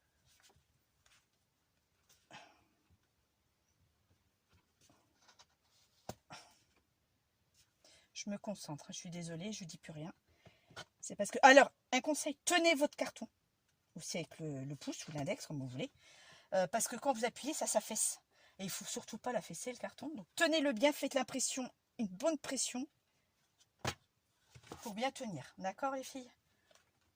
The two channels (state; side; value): identical; both; correlation 1.00